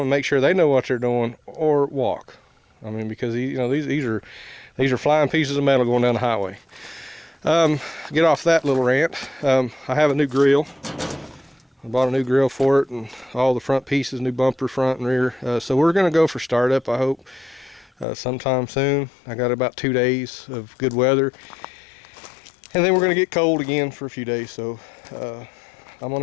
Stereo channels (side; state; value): right; drops out; at 18.1 s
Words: and make sure they know what they're doing, or walk. I mean, because these are flying pieces of metal going down the highway. Get off that little rant. I have a new grill. I bought a new grill for it, and all the front pieces, new bumper front and rear. So we're going to go for startup, I hope, sometime soon. I got about 2 days of good weather, and then we're going to get cold again for a few days. So I'm going